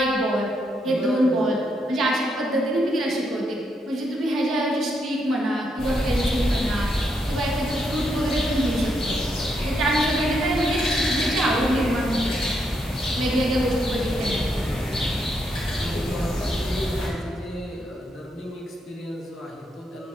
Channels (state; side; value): normal; both; correlation 0.78